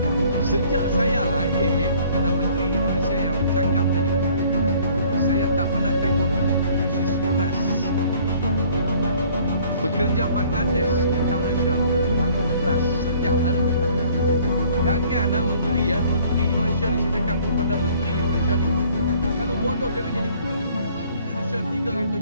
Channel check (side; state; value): both; inverted; correlation -0.57